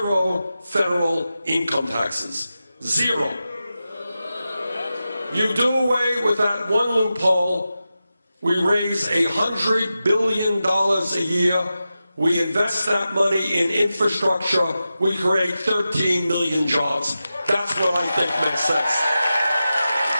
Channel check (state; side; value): inverted; both; correlation -0.92